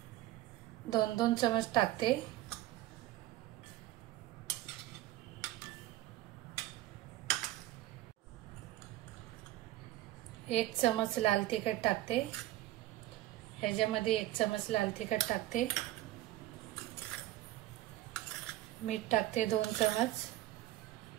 2-2 चमच टाकते। 1 चमच लाल तिखट टाकते, ह्याच्यामध्ये 1 चमच लाल तिखट टाकते। मीठ टाकते 2 चमच,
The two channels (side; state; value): left; quieter; 15.9 dB